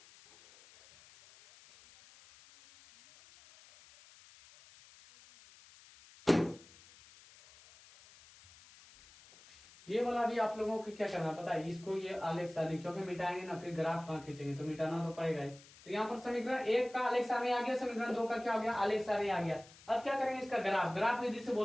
ये वाला भी आप लोगों को क्या करना पता है, इसको ये आलेख सारणी क्योंकि मिटाएंगे ना फिर ग्राफ कहाँ खींचेंगे, तो मिटाना तो पड़ेगा ही। तो यहाँ पर समीकरण 1 का आलेख सारणी आ गया, समीकरण 2 का क्या हो गया आलेख सारणी आ गया। अब क्या करेंगे इसका ग्राफ विधि से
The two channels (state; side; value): noise; left; hiss, 23 dB below the sound